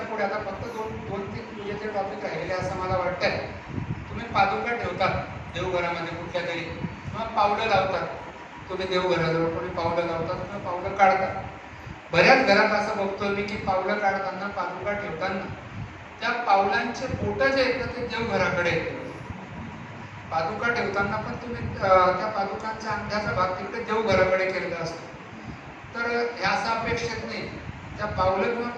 पुढे आता फक्त 2-3 पूजेचे टॉपिक राहिलेले असं मला वाटतंय. तुम्ही पादुका ठेवतात देवघरामध्ये कुठल्या तरी किंवा पावलं लावतात. तुम्ही देवघराजवळ कोणी पावलं लावतात किंवा पावलं काढतात. बऱ्याच घरात असं बघतो मी की पावलं काढताना पादुका ठेवताना त्या पावलांचे बोटं जे आहेत ते देवघराकडे येतात. पादुका ठेवताना पण तुम्ही त्या पादुकांच्या अंगठ्याचा भाग तिकडे देवघराकडे केलेला असतो. तर हे असं अपेक्षित नाही. त्या पावलं किंवा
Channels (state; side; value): identical; both; correlation 1.00